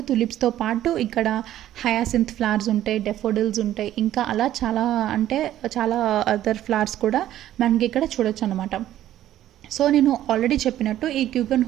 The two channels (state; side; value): quieter; left; 12.7 dB